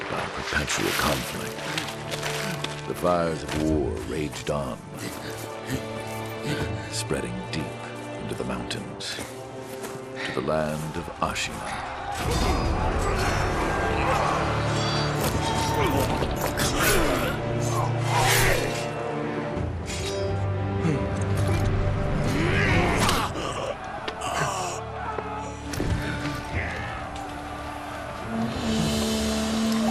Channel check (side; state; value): both; identical; correlation 1.00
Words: by perpetual conflict. The fires of war raged on, spreading deep into the mountains, to the land of Ashina.